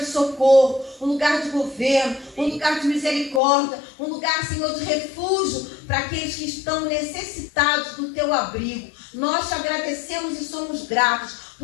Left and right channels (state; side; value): drops out; right; at 3.4 s